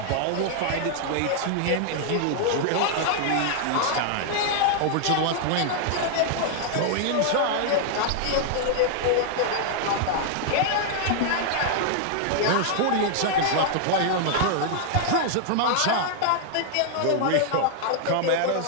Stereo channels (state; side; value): different; both; correlation -0.01